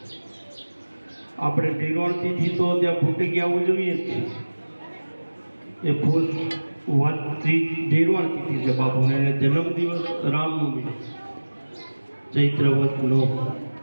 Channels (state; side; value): inverted; both; correlation -1.00